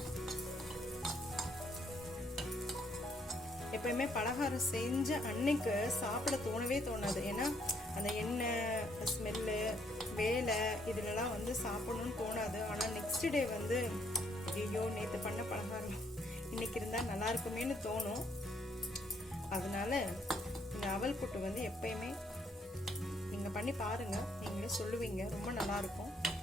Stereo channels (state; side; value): normal; both; correlation 0.69